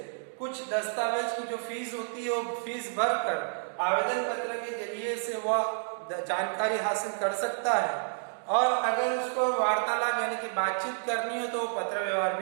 कुछ दस्तावेज की जो फीस होती है वो फीस भरकर आवेदन पत्र के जरिए से वह जानकारी हासिल कर सकता है। और अगर उसको वार्तालाप यानी कि बातचीत करनी है तो वो पत्र व्यवहार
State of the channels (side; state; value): left; silent; digital silence